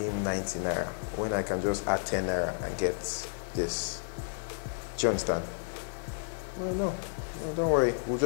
90 naira when I can just add 10 naira and get this? Do you understand? Well, no, don't worry. We'll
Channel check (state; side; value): silent; right; digital silence